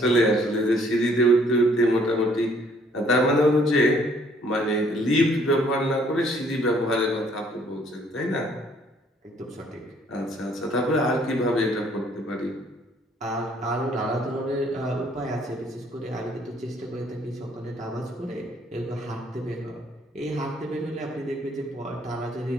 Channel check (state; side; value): normal; both; correlation 0.62